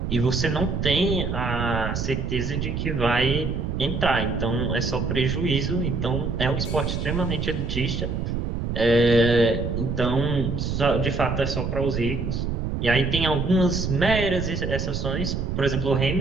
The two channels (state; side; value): noise; right; rumble, 2 dB below the sound